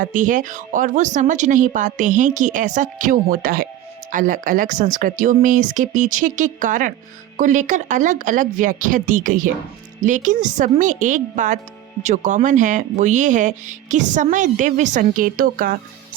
है और वो समझ नहीं पाते हैं कि ऐसा क्यों होता है। अलग अलग संस्कृतियों में इसके पीछे के कारण को लेकर अलग अलग व्याख्या दी गई है, लेकिन सब में एक बात जो कॉमन है वो ये है कि समय दिव्य संकेतों का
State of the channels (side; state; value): left; quieter; 12.7 dB